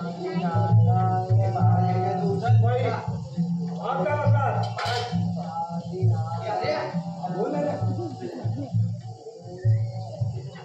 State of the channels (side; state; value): both; identical; correlation 1.00